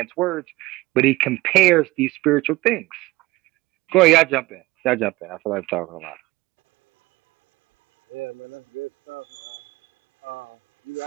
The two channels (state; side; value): quieter; left; 20.3 dB